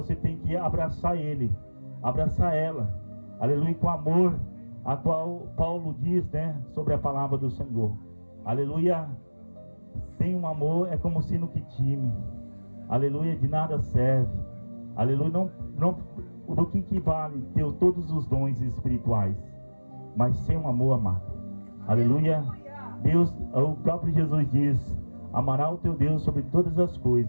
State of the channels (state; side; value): inverted; both; correlation -1.00